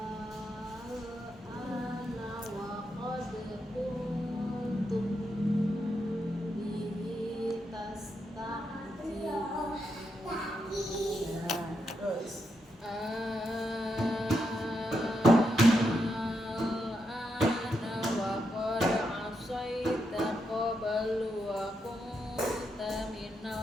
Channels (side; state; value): both; normal; correlation 0.83